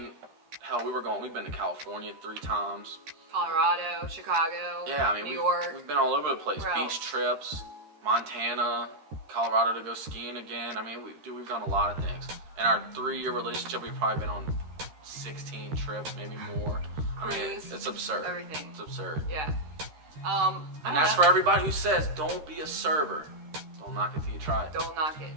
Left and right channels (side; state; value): left; late; 13 ms